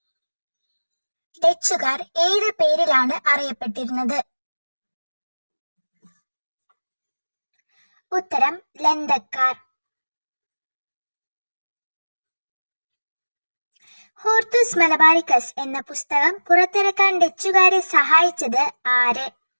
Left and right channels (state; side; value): inverted; both; correlation -1.00